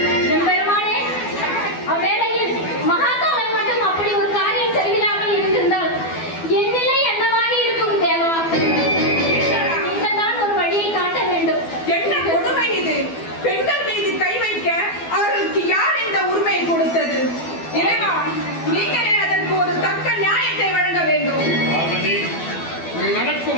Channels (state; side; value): late; right; 12 ms